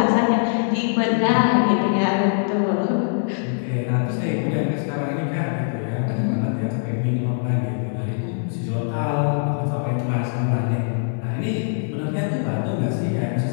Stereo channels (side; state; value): right; silent; digital silence